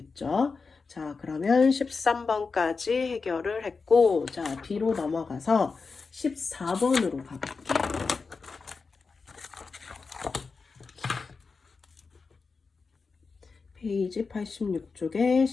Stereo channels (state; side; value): quieter; right; 4.6 dB